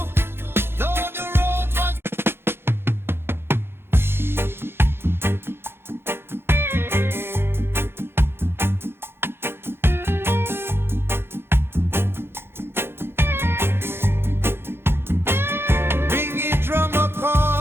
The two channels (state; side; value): late; left; 0.11 ms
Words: Though the road was Bingy drummer